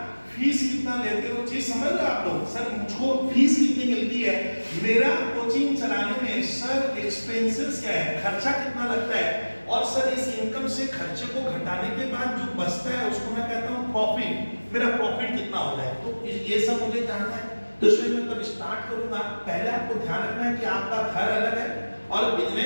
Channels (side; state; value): both; inverted; correlation -1.00